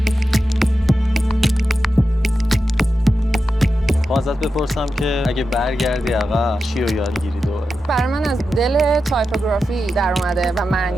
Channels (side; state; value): both; normal; correlation 0.90